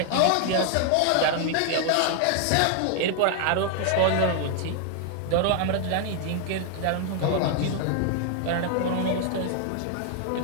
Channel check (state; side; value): different; both; correlation 0.00